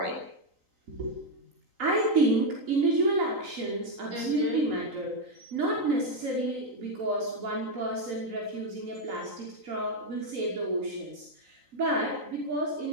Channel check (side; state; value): left; late; 3.9 ms